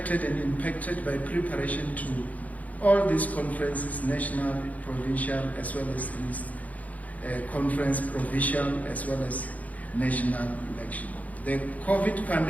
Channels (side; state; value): right; late; 0.074 ms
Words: and impacted by preparation all these conferences, national, provincial, as well as this conference, provincial, as well as national election. The COVID